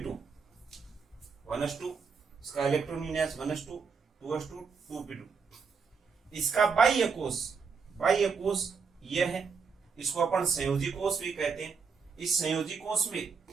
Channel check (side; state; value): left; quieter; 5.4 dB